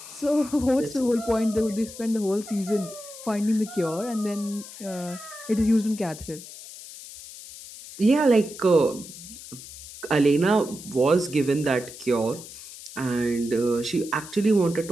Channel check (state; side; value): noise; left; hiss, 14 dB below the sound